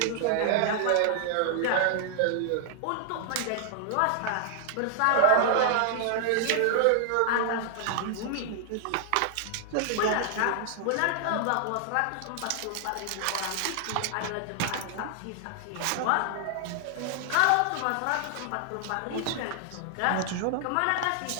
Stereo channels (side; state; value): both; different; correlation 0.00